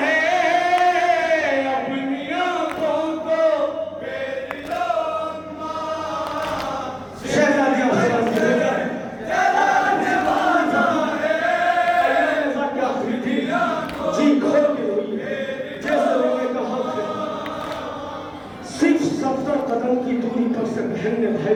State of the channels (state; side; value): identical; both; correlation 1.00